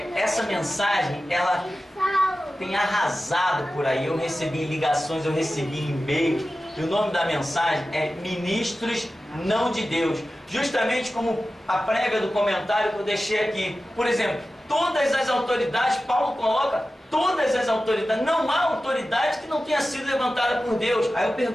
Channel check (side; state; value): both; normal; correlation 0.94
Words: Essa mensagem, ela tem arrasado por aí. Eu recebi ligações, eu recebi e-mail. E o nome da mensagem é Ministros não de Deus. Justamente como a prévia do comentário que eu deixei aqui. Por exemplo, todas as autoridades, Paulo coloca todas as autoridades. Não há autoridade que não tenha sido levantada por Deus. Aí eu